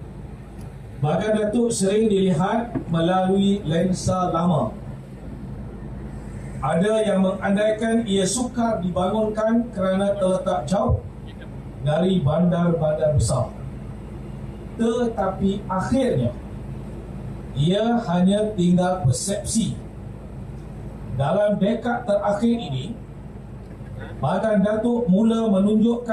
Bagan Datuk sering dilihat melalui lensa lama. Ada yang mengandaikan ia sukar dibangunkan kerana terletak jauh dari bandar-bandar besar. Tetapi akhirnya ia hanya tinggal persepsi. Dalam dekad terakhir ini, Bagan Datuk mula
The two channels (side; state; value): both; identical; correlation 1.00